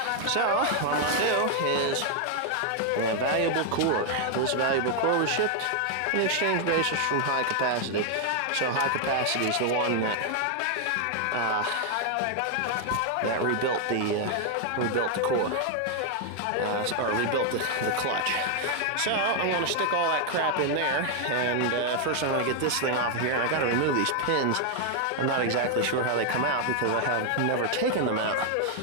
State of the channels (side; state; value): both; different; correlation 0.00